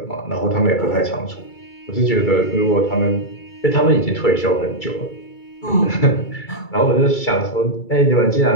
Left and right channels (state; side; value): late; right; 2.3 ms